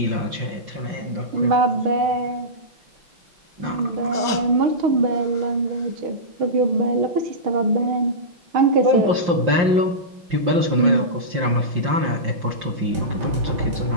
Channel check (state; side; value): late; left; 5.7 ms